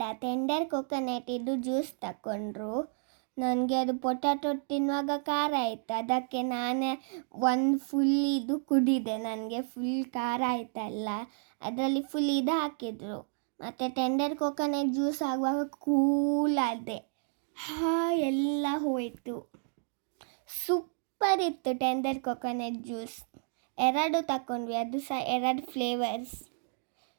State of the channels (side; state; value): left; silent; digital silence